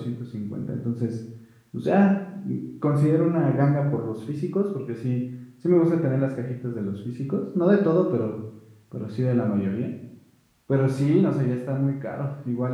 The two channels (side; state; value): both; identical; correlation 1.00